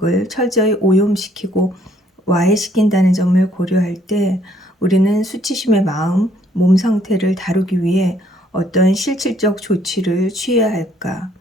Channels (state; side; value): normal; both; correlation 0.65